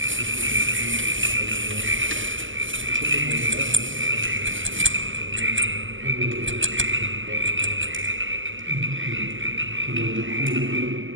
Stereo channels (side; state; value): left; late; 0.57 ms